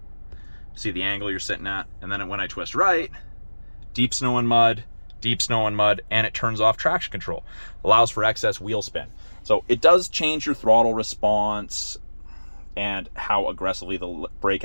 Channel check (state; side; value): inverted; both; correlation -1.00